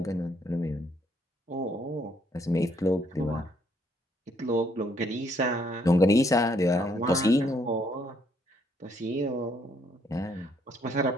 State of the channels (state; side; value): normal; both; correlation 0.69